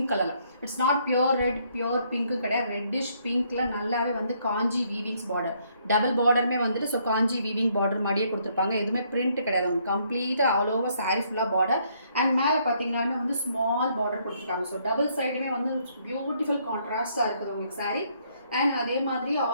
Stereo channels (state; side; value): inverted; both; correlation -0.69